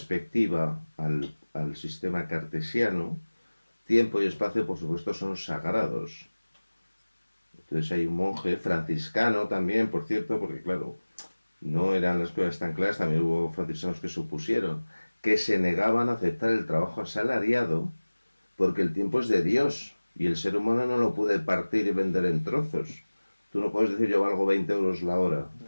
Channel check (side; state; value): both; inverted; correlation -1.00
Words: al sistema cartesiano, tiempo y espacio, por supuesto, son sagrados. Entonces hay un monje franciscano también, por cierto, porque claro, no eran las cosas tan claras, también hubo franciscanos que supusieron que se negaban a aceptar el trabajo asalariado porque el tiempo es de Dios y el ser humano no lo puede partir y vender en trozos. Tú no puedes decir yo valgo 20 euros la hora.